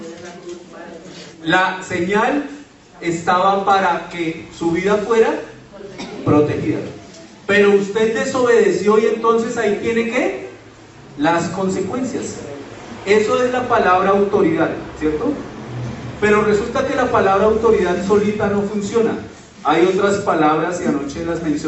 La señal estaba para que su vida fuera protegida, pero usted desobedeció y entonces ahí tiene que las consecuencias. Eso es la palabra autoridad, ¿cierto? Pero resulta que la palabra autoridad solita no funciona. Hay otras palabras y anoche las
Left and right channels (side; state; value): both; identical; correlation 1.00